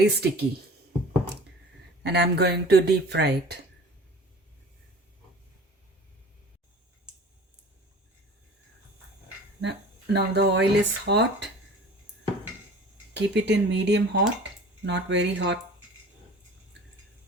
sticky. And I'm going to deep fry it. Now the oil is hot. Keep it in medium hot, not very hot.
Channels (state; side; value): normal; both; correlation 0.43